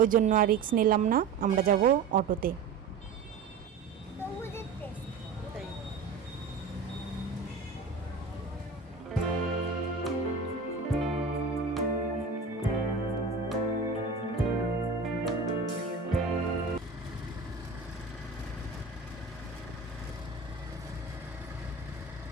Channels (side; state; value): left; quieter; 4.8 dB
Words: ওই জন্য আর রিস্ক নিলাম না, আমরা যাব অটোতে।